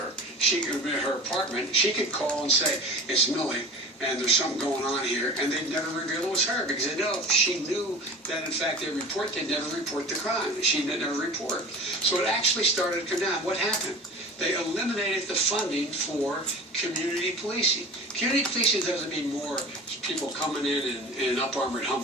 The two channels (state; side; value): normal; both; correlation 0.37